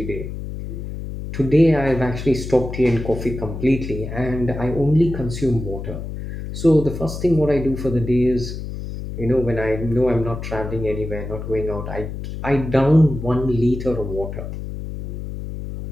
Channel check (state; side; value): noise; left; hum, 7 dB below the sound